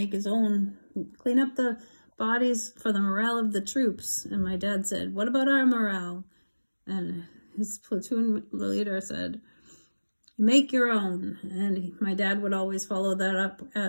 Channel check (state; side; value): inverted; both; correlation -1.00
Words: his own, clean up the bodies for the morale of the troops. And my dad said, what about our morale? And his platoon leader said, You make your own. And my dad would always follow that up